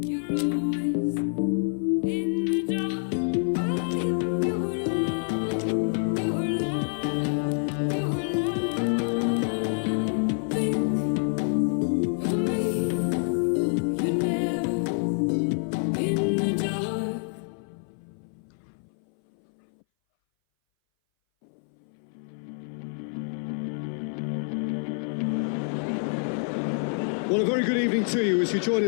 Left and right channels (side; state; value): right; silent; 59 dB below the other